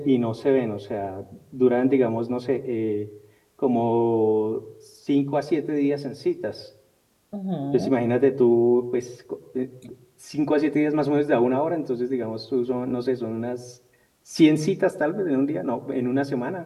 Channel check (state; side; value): identical; both; correlation 1.00